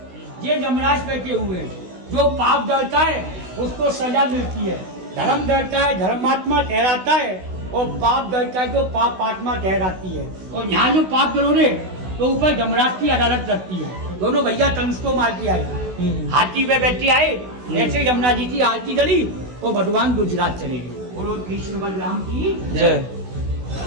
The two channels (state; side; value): late; left; 16 ms